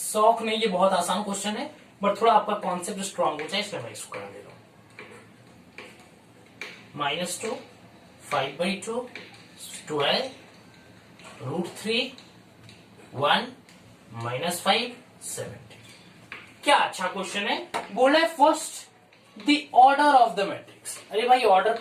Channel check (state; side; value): identical; both; correlation 1.00